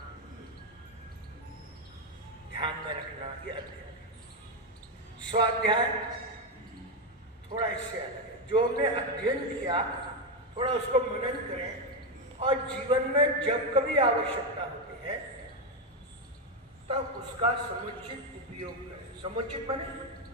ध्यान में रखना, ये अध्ययन। स्वाध्याय थोड़ा इससे अलग है। जो हमने अध्ययन किया थोड़ा उसको मनन करें और जीवन में जब कभी आवश्यकता होती है तब उसका समुचित उपयोग करें। समुचित माने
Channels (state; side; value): normal; both; correlation 0.07